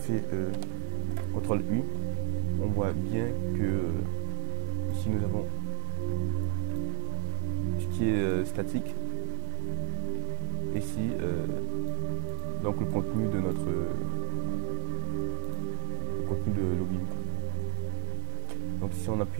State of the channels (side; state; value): left; silent; 55 dB below the other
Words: CTRL U, on voit bien que ici nous avons ce qui est statique. Ici donc le contenu de notre contenu de login. Donc si on